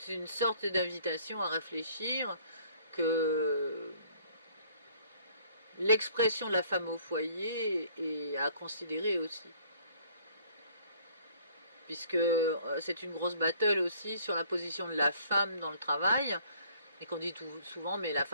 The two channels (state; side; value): inverted; both; correlation -0.58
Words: une sorte d'invitation à réfléchir que l'expression de la femme au foyer est à considérer aussi. Puisque c'est une grosse battle aussi sur la position de la femme dans le travail, et qu'on dit souvent, mais la